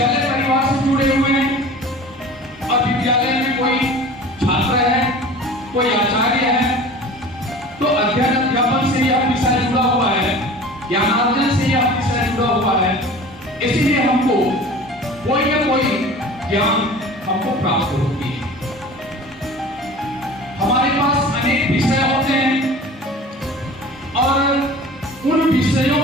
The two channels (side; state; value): both; normal; correlation 0.41